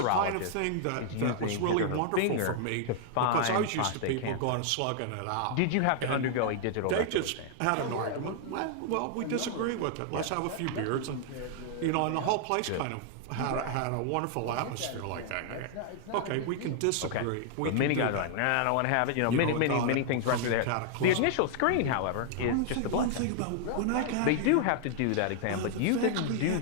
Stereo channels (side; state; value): both; different; correlation -0.01